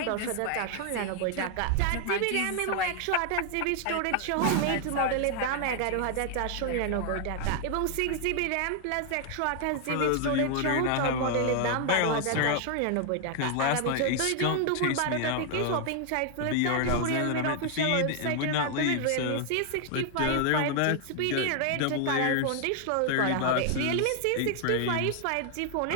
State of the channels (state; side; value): different; both; correlation 0.00